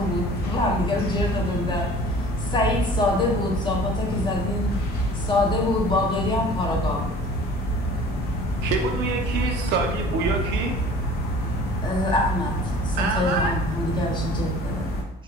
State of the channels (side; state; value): both; normal; correlation 0.47